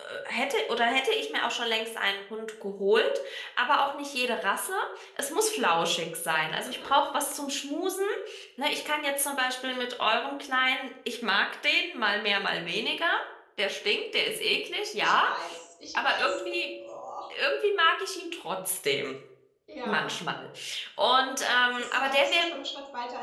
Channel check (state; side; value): identical; both; correlation 1.00